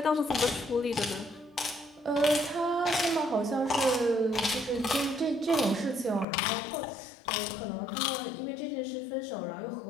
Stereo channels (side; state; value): right; drops out; at 6.2 s